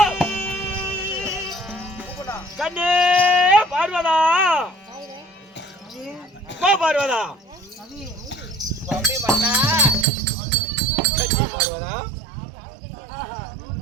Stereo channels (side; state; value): left; drops out; at 10.1 s